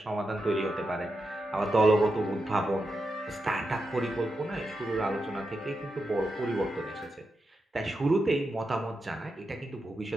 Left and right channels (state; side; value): normal; both; correlation 0.87